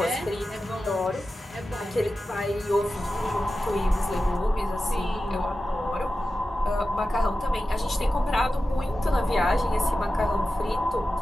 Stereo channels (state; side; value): normal; both; correlation 0.93